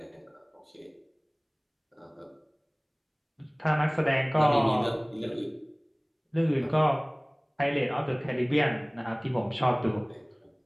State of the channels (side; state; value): both; identical; correlation 1.00